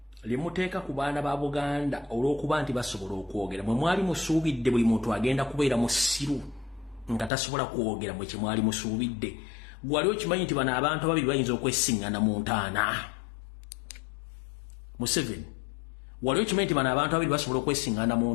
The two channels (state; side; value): drops out; right; at 7.3 s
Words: limuteeka ku baana ba Buganda olw'okuba nti basobola okwogera mwe mwali musuubidde buli muntu agenda kubeera musiru nga tasobola kwogera mwe kye mwali musuubidde gwali okimanyi nti bano abantu ababiri bayinza okwesiŋŋana mu ntaana Museveni wali okimanyi nti bano abantu ababiri basobola okwesiŋŋana mu